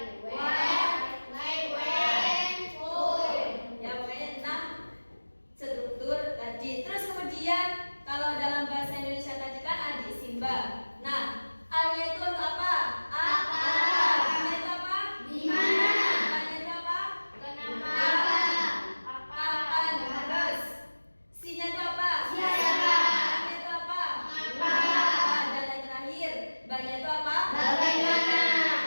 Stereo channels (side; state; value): both; inverted; correlation -1.00